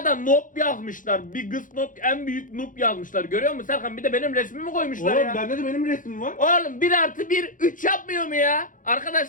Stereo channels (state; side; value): late; right; 0.38 ms